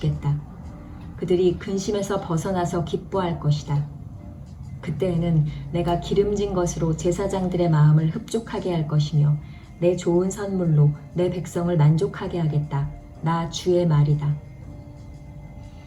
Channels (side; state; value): both; identical; correlation 1.00